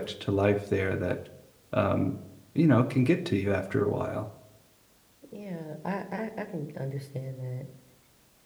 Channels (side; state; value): both; identical; correlation 1.00